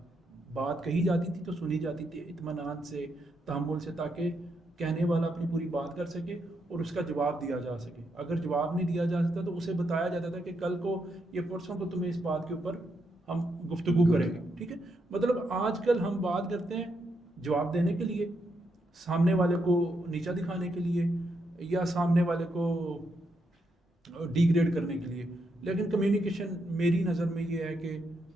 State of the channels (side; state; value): both; normal; correlation 0.80